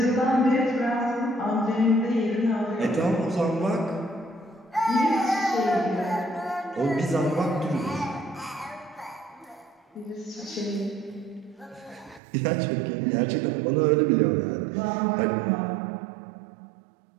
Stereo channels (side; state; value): left; drops out; at 12.2 s